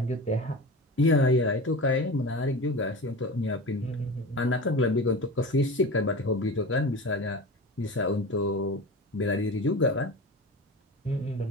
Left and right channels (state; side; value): normal; both; correlation 0.30